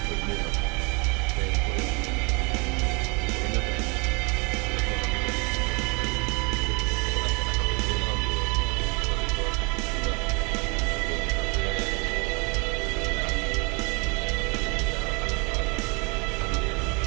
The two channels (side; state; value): left; quieter; 31.3 dB